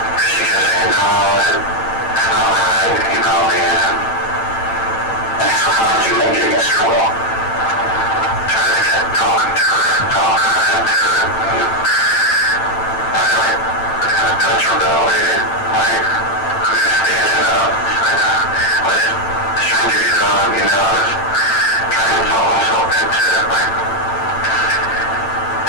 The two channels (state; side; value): late; right; 8.9 ms